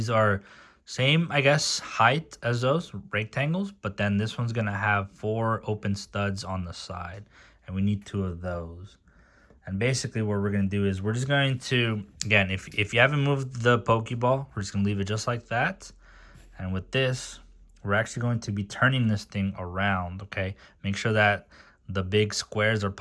are same, I guess, height as those rectangles, but then this one's going to have 4 open studs on the side. And we need 2 of those. And basically what we're going to do is we're just going to, again, if you haven't moved the Pokeball, we're just going to leave it just like that. And with this, we're actually going to be turning this thing around, okay? Make sure that the big squares are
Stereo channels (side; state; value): both; identical; correlation 1.00